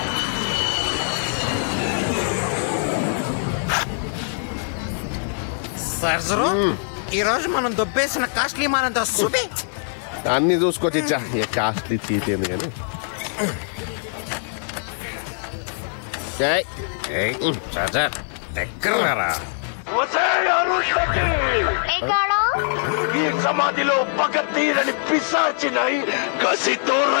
సర్జరు ఈ రోజు మనం దొబ్బేసిన కాస్ట్లీ మానంతో చూపి. అన్ని చూసుకోవచ్చు ఇచ్చా కాస్ట్లీ చీతేంది కానీ. సర్జర్ దగ్గర ఈ సమాధిలో పగ తీరని పిశాచినై కసితో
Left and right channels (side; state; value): right; silent; digital silence